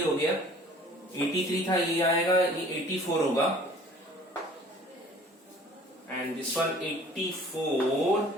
गया, 83 था, ये आएगा, ये 84 होगा, and this one 84,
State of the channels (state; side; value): normal; both; correlation 0.50